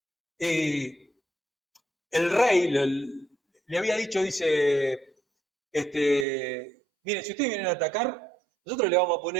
el rey le había dicho, dice, miren, si ustedes vienen a atacar, nosotros le vamos a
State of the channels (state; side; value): drops out; left; at 6.2 s